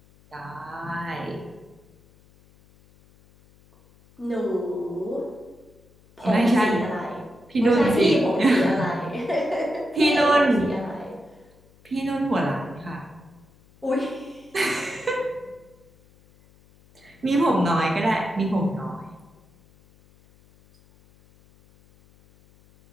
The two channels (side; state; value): left; noise; hum, 29 dB below the sound